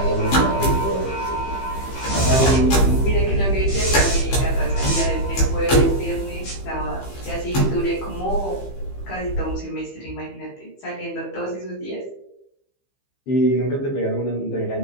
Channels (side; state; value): right; late; 15 ms